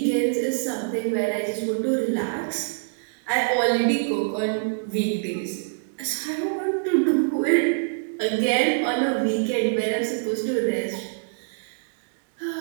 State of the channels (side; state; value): left; silent; digital silence